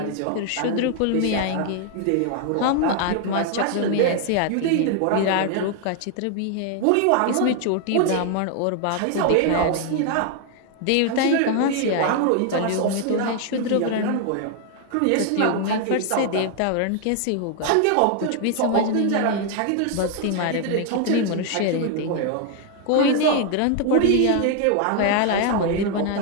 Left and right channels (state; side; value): different; both; correlation 0.00